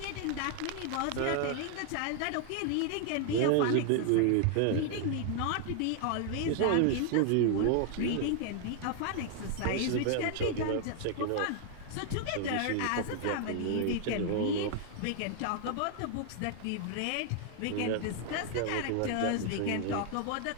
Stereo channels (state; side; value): different; both; correlation 0.00